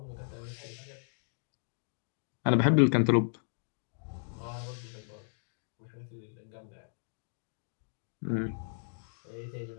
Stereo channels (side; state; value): right; silent; digital silence